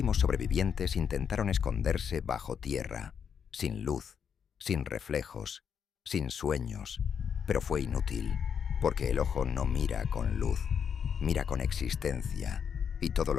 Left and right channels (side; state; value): right; quieter; 7.3 dB